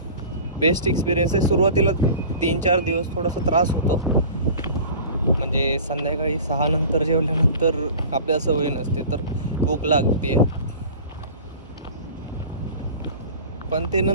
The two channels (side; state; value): both; inverted; correlation -0.40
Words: बेस्ट एक्सपिरियन्स आहे. सुरुवातीला 3-4 दिवस थोडासा त्रास होतो, म्हणजे संध्याकाळी 6 नंतर जेवल्यानंतर आपल्याला सवय नसते तर भूक लागते, पण ते